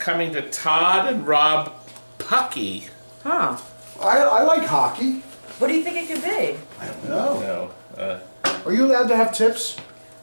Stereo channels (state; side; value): inverted; both; correlation -1.00